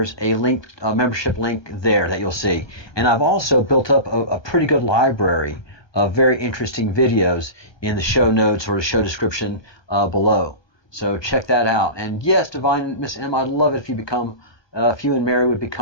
a link, a membership link there that you'll see. And I've also built up a pretty good library of very interesting videos in the show notes or the show description below. So check that out. And yes, Divine Miss M, I'd love it if you and Mary would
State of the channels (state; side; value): late; right; 1.3 ms